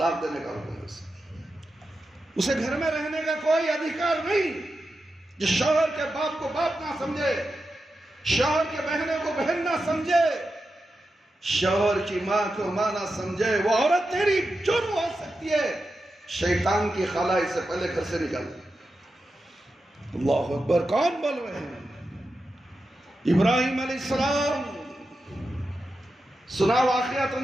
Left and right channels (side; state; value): both; normal; correlation 0.90